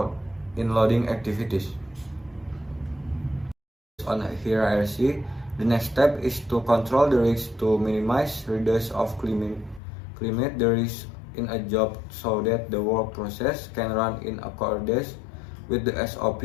in loading activities. On hierarchy, the next step is to control the risk to minimize reduce of climate the risk in a job so that the work process can run in accordance with the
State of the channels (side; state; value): right; drops out; at 9.8 s